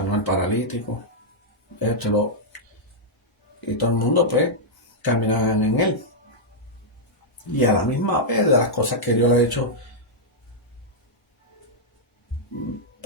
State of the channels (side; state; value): both; normal; correlation -0.06